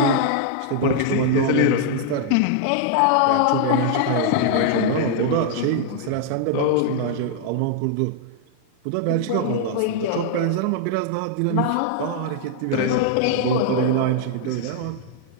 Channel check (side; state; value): both; different; correlation -0.01